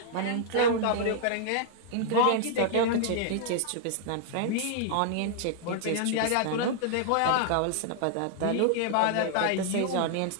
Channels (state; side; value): different; both; correlation -0.01